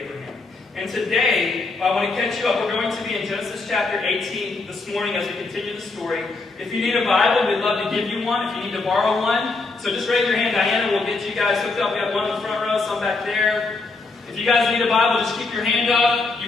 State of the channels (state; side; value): quieter; right; 3.7 dB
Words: And today, I want to catch you up. We're going to be in Genesis chapter 18 this morning as we continue the story. If you need a Bible, we'd love to give you one. If you need to borrow one, so just raise your hand. Diana will get you guys hooked up. We have one in the front row, some back there. If you guys need a Bible, just keep your hand up.